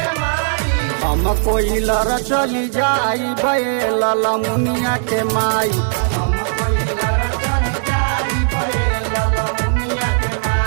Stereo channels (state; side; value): silent; left; 68 dB below the other